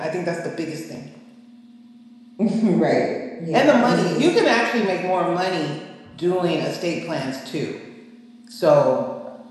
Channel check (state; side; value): identical; both; correlation 1.00